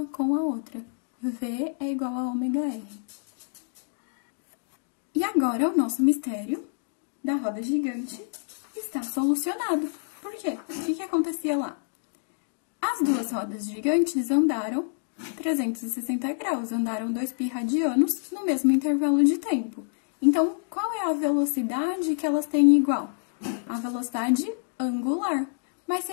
com a outra. V é igual a ômega r. E agora o nosso mistério da roda gigante está solucionado. Por quê? O que acontecia lá? As duas rodas gigantes andaram 360 graus, andaram 2π radianos no mesmo intervalo de tempo. Então, qual é a velocidade que elas têm igual? A velocidade angular. Mas se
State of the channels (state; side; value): silent; right; digital silence